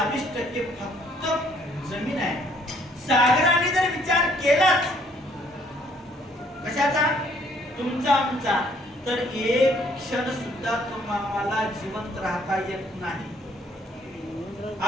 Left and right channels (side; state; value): both; normal; correlation 0.64